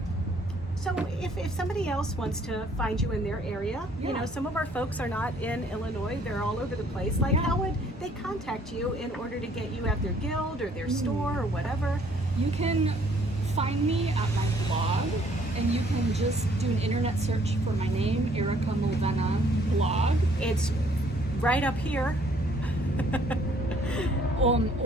so if somebody else wants to find you in their area, you Yeah. know, some of our folks are not in Illinois, they're all over the place. Like, Yeah. how would they contact you in order to get you at their guild or their store or whatever? You can find me at my blog, and you can just do an internet search for my name, Erika Mulvenna blog, It's right up here.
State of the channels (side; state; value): both; normal; correlation 0.62